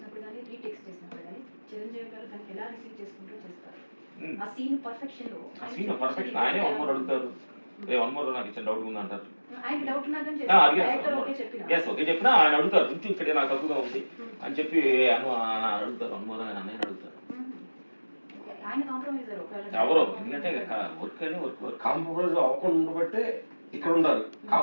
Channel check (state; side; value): inverted; both; correlation -1.00